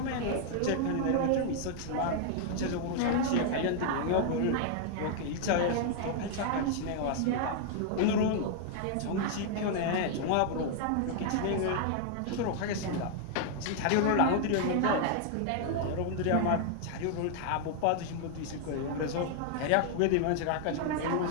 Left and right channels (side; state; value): both; different; correlation 0.00